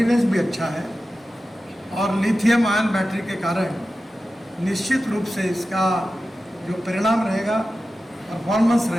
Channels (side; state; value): both; normal; correlation 0.94